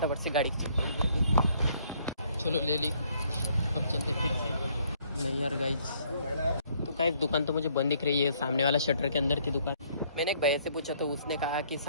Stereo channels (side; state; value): both; inverted; correlation -0.65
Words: से गाड़ी की चाबी चलो ले ली। अब चलते फिर से। नहीं यार गाइस, तो गाइस दुकान तो मुझे बंद दिख रही है, सामने वाला शटर के अंदर थी दुकान। मैंने एक भैया से पूछा तो उसने कहा कि